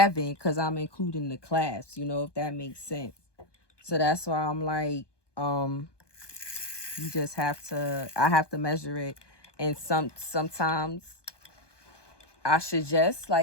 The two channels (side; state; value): right; late; 1.2 ms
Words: because I'm including the clasps, if that makes sense. So that's why I'm like, you just have to, I have to measure it. And sometimes I suggest,